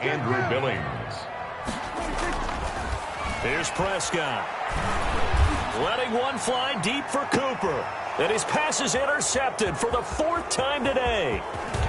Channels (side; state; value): both; identical; correlation 1.00